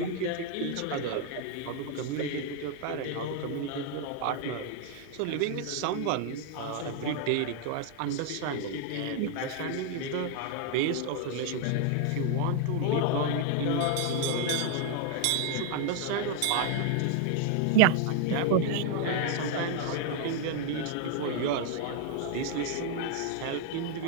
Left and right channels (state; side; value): different; both; correlation 0.00